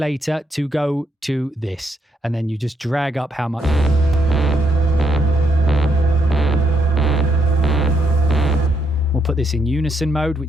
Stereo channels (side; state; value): both; normal; correlation 0.76